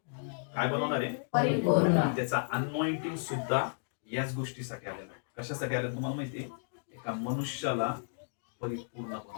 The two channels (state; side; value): silent; right; digital silence